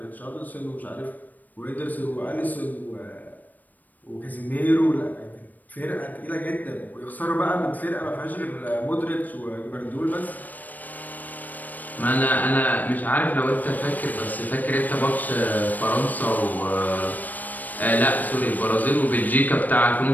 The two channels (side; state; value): right; late; 0.084 ms